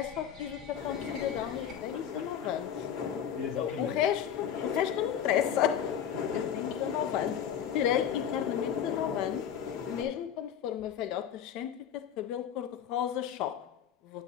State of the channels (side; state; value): right; quieter; 9.0 dB